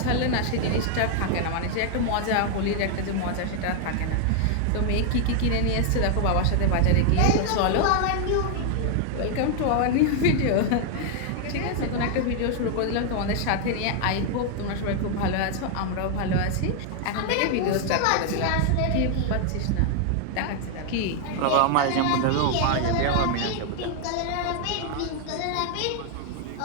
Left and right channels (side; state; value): both; different; correlation 0.00